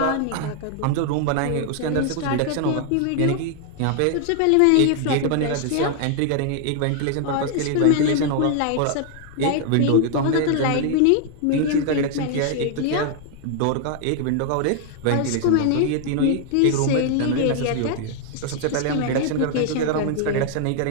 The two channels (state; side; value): different; both; correlation 0.00